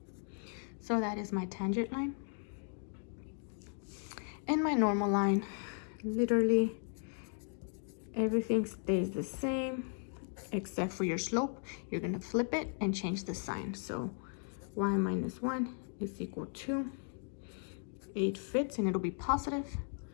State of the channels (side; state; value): right; silent; 53 dB below the other